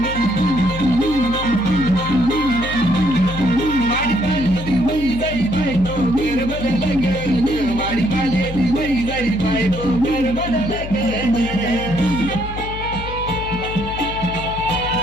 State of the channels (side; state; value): left; noise; hum, 9 dB below the sound